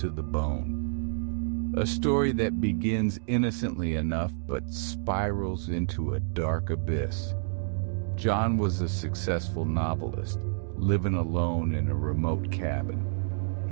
the bone. A story that begins innocently enough but spirals into a dark abyss. John was a successful novelist, living alone in a remote cabin.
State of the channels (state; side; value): silent; left; digital silence